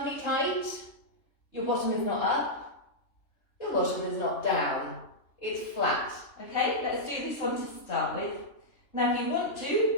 tight, your bottom is not up, your bottom is not down. It's flat. Okay, let's do this one to start with. Now if you want to,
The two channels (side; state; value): right; late; 3.2 ms